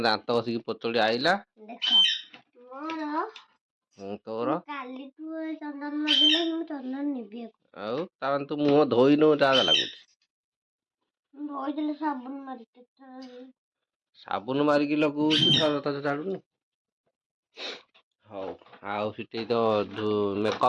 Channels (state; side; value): identical; both; correlation 1.00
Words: ଦାନ୍ତ ବସିକି ପତଳି ଆଇଲା। ତୋର ଆଉ ତାମାନେ ତୁ ମୁହଁ ଧୋଇନୁ, ଯାହା ଲାଗୁଛି। ସାବୁନ ମାରିକି ଲଗଉଛୁ, ଥରେ ଛାଡୁନୁ। ହଉ, ଆଉ ସେଠି ତ